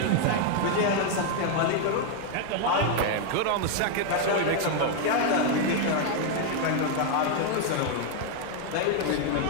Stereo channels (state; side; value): different; both; correlation 0.01